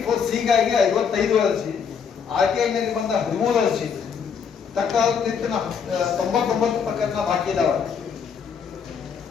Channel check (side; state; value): right; quieter; 6.7 dB